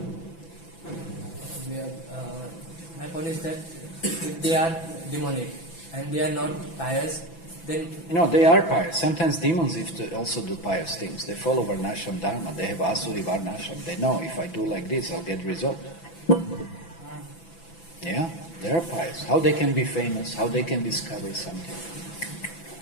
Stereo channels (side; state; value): right; late; 6.0 ms